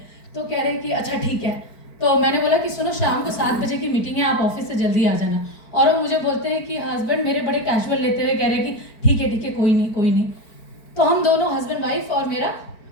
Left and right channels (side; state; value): right; late; 4.5 ms